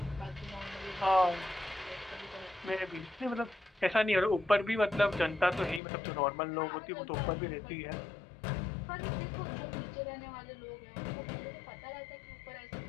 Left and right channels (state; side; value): drops out; right; at 5.8 s